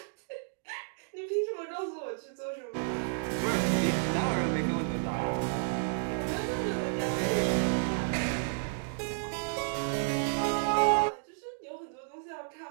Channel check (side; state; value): left; silent; digital silence